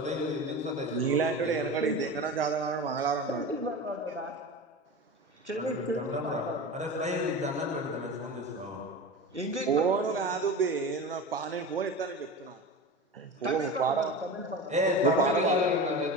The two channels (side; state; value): both; normal; correlation 0.29